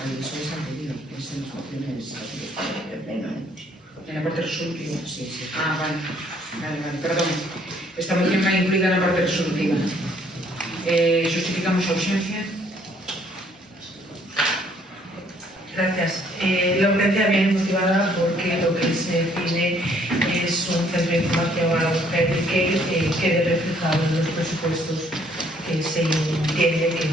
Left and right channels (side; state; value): both; normal; correlation 0.64